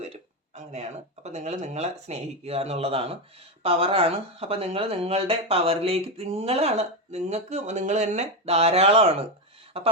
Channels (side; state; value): both; normal; correlation 0.11